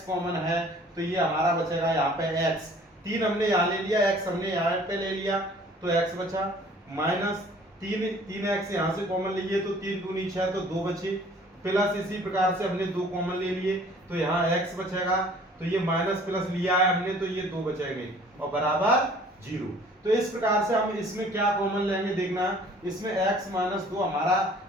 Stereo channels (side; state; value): both; normal; correlation 0.53